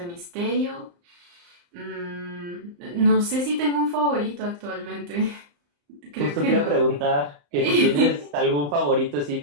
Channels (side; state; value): left; late; 35 ms